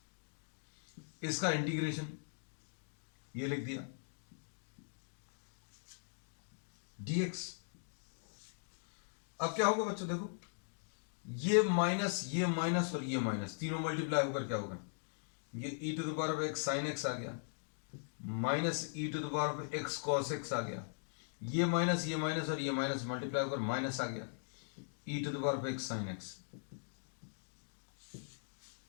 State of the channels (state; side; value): silent; right; digital silence